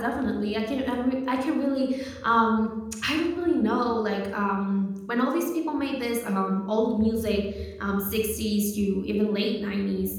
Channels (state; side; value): identical; both; correlation 1.00